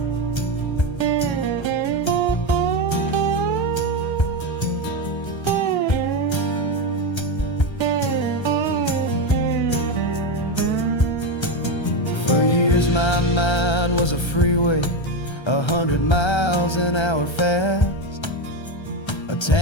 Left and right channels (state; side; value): late; right; 1.3 ms